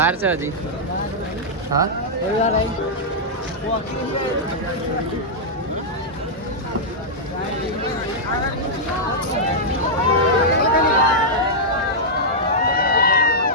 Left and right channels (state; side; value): normal; both; correlation -0.07